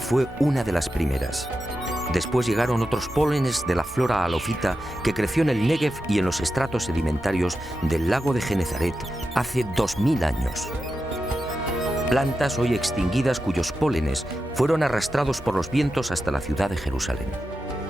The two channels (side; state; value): both; normal; correlation 0.90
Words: una de las primeras. Después llegaron otros pólenes de la flora halofita que creció en el Negev y en los estratos sedimentarios del lago de Genezaret hace 2000 años. Plantas hoy extinguidas cuyos pólenes fueron arrastrados por los vientos hasta la ciudad de Jerusalén.